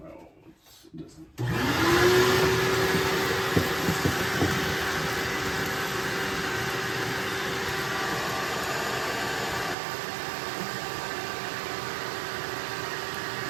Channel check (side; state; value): left; drops out; at 9.8 s